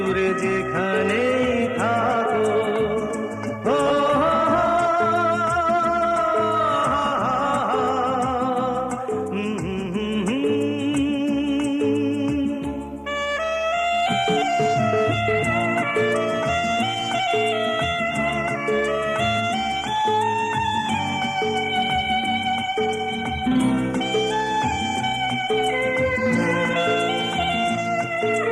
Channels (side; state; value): both; identical; correlation 1.00